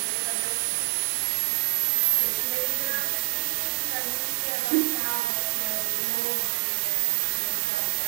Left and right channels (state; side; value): silent; left; digital silence